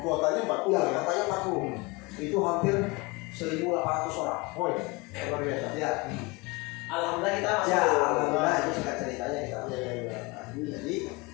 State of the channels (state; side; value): quieter; right; 25.7 dB